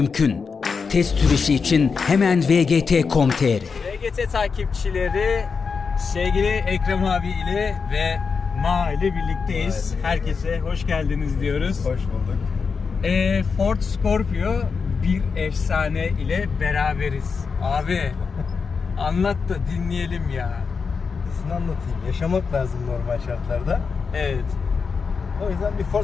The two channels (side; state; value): right; quieter; 5.3 dB